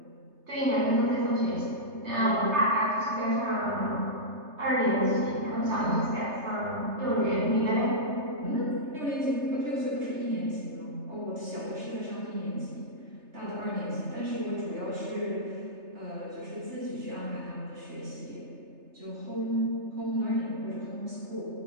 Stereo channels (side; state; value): left; late; 3.3 ms